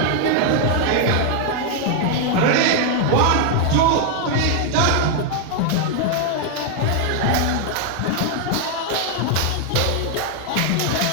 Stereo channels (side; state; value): both; different; correlation 0.00